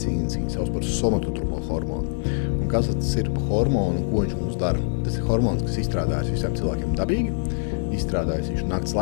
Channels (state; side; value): silent; right; digital silence